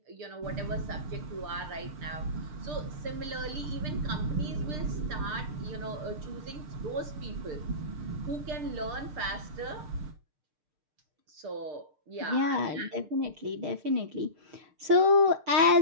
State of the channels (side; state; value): left; late; 6.6 ms